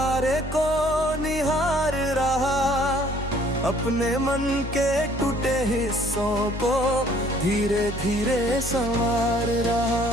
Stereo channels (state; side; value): normal; both; correlation 0.59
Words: को निहार रहा, अपने मन के टूटे हिस्सों को धीरे धीरे संवार